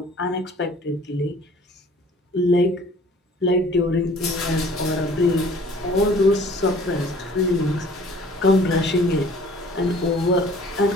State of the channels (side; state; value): both; normal; correlation 0.52